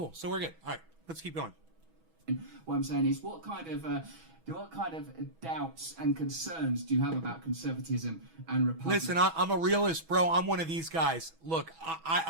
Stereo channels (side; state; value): left; late; 6.1 ms